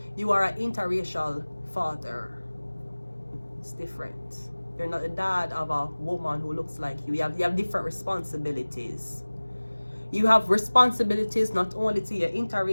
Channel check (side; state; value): both; inverted; correlation -1.00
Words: You are an interracial father. It's different. You're not the dad of a woman who looks like you. You have different responsibilities. You have responsibilities not only to your